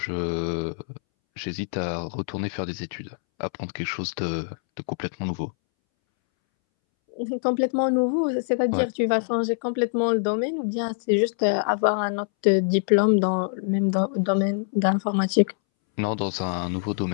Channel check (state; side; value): silent; right; 62 dB below the other